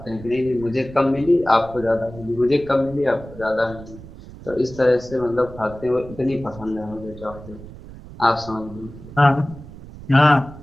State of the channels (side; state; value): right; noise; rumble, 16 dB below the sound